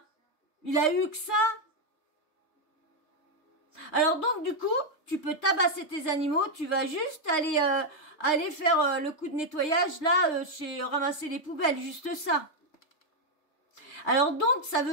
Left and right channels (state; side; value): late; right; 3.3 ms